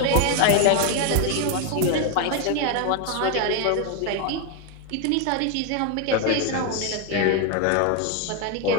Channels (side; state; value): both; different; correlation 0.01